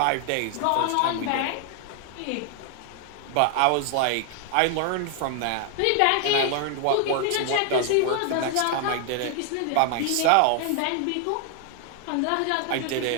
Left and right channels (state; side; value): different; both; correlation 0.00